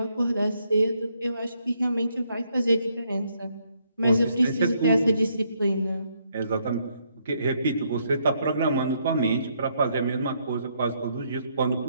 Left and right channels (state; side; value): inverted; both; correlation -0.73